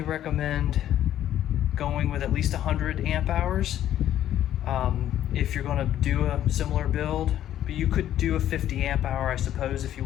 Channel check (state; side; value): quieter; right; 11.7 dB